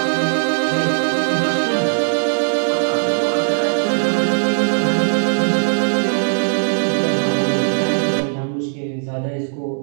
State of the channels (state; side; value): silent; left; digital silence